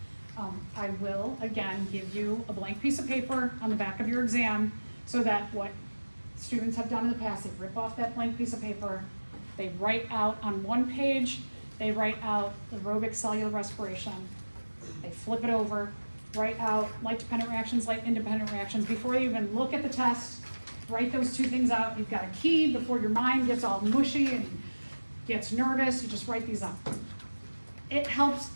I will, again, give you a blank piece of paper on the back of your exam so that what students have done in the past, they rip off that blank piece of paper, they write out on one page, they write out aerobic cellular respiration, they flip it over, write out light-dependent reactions, light-independent reactions. Before you even look at the test, write those 2 things out. You've got a key before your mind gets all mushy and gets nervous, you just write these up. It helps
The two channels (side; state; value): both; inverted; correlation -1.00